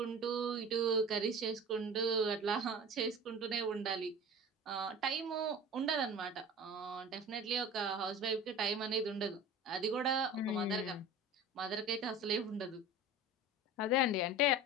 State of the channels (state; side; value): normal; both; correlation 0.36